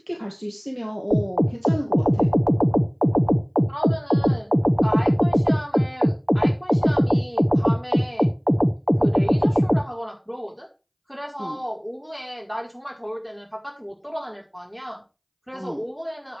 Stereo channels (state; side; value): identical; both; correlation 1.00